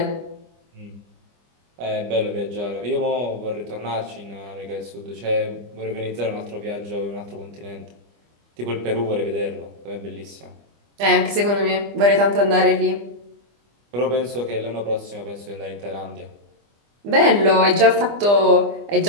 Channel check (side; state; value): left; late; 25 ms